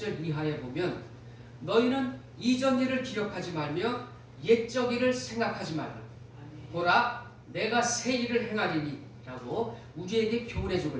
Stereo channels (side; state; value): both; identical; correlation 1.00